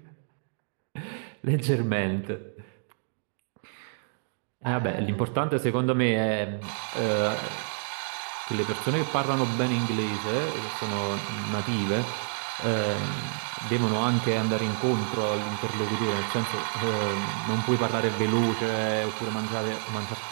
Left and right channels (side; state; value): left; silent; 59 dB below the other